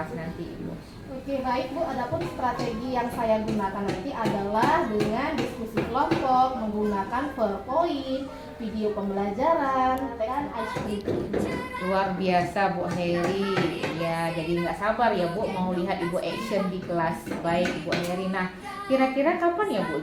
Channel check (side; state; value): both; identical; correlation 1.00